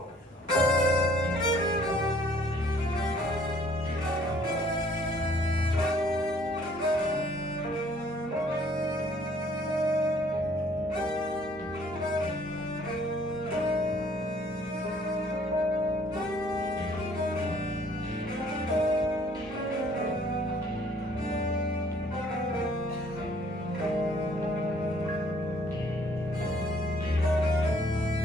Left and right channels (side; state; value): both; normal; correlation 0.60